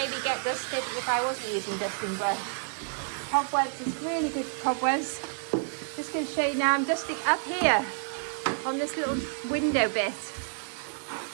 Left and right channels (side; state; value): left; silent; 57 dB below the other